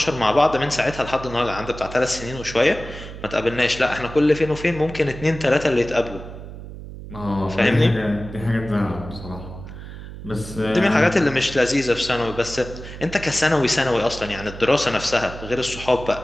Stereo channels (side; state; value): right; noise; hum, 12 dB below the sound